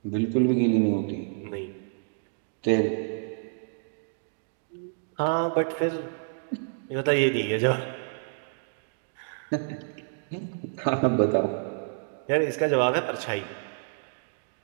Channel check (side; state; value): left; silent; digital silence